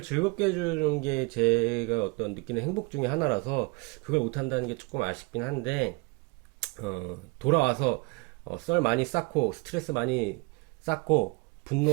즐겁게 해주는 게 제가 어떤 느끼는 행복 중에 하나라서 그걸 못한다는 게 조금 아쉽긴 한데 돌아와서 썰 많이 쌓고 스트레스 많이 쌓고 분노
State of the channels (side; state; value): left; quieter; 26.9 dB